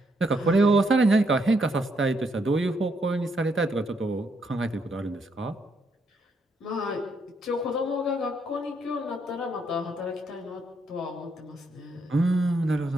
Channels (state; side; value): normal; both; correlation 0.75